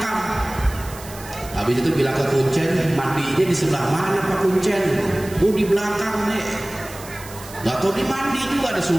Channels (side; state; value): right; noise; hiss, 16 dB below the sound